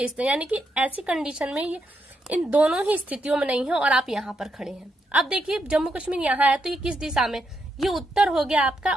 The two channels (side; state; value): both; normal; correlation 0.81